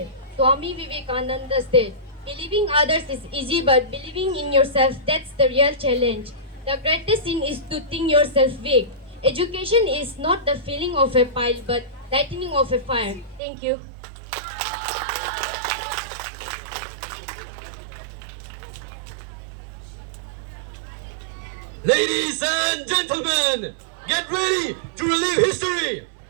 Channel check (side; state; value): left; drops out; at 13.4 s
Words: Swami Vivekananda said, believing others is easy, but believing in yourself, that's the real challenge. The greatest sin is to think yourself weak. Education is not the filling of a pile, but lightening of a fire. Thank you. Ladies and gentlemen, get ready to relive history.